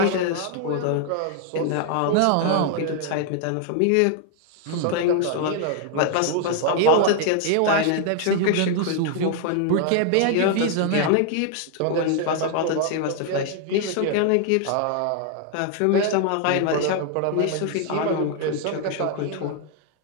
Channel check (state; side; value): different; both; correlation 0.00